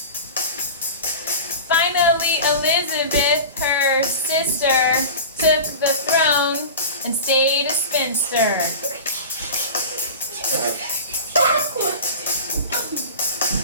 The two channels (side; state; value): both; inverted; correlation -0.32